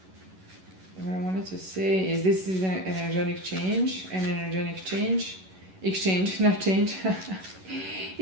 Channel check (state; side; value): late; left; 11 ms